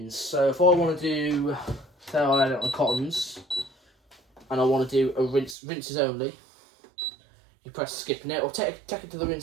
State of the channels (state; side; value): drops out; left; at 5.6 s